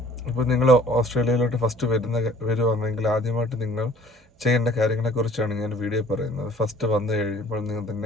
ഇപ്പോൾ നിങ്ങൾ ഓസ്ട്രേലിയയിലോട്ട് ഫസ്റ്റ് വരുവാണെങ്കിൽ ആദ്യമായിട്ട് നിങ്ങൾ ചെയ്യേണ്ട കാര്യങ്ങളെക്കുറിച്ചാണ് ഞാൻ വീഡിയോ പറയുന്നത്. ഫസ്റ്റ് വന്നു കഴിയുമ്പോൾ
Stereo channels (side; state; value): both; normal; correlation 0.53